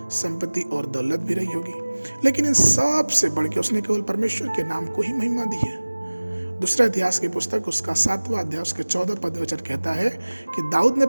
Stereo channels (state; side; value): inverted; both; correlation -1.00